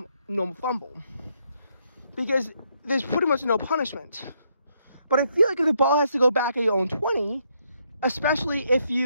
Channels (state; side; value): inverted; both; correlation -0.75